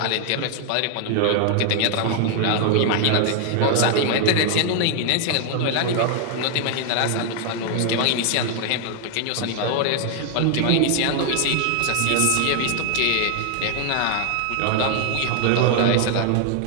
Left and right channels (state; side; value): different; both; correlation 0.00